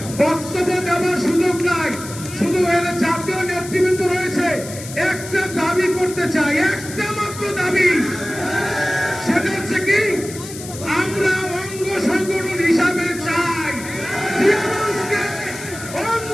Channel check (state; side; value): noise; left; hiss, 13 dB below the sound